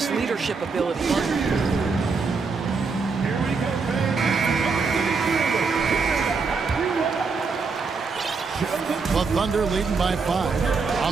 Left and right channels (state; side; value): quieter; left; 4.6 dB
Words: leadership ability. The Thunder leading by 5.